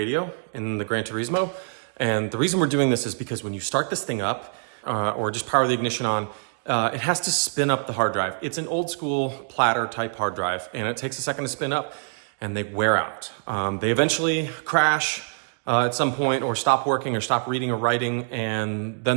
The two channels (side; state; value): left; silent; digital silence